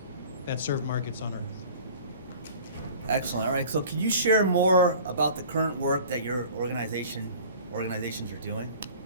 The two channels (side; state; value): both; inverted; correlation -0.44